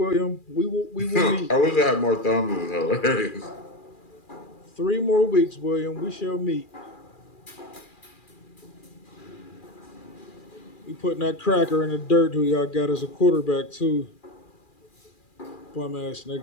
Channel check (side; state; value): right; late; 2.4 ms